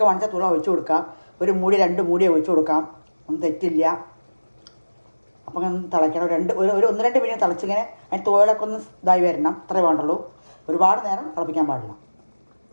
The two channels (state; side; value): inverted; both; correlation -1.00